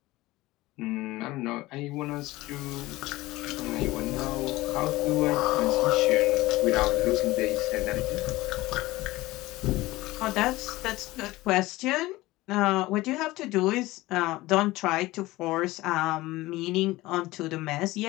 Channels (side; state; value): right; quieter; 18.9 dB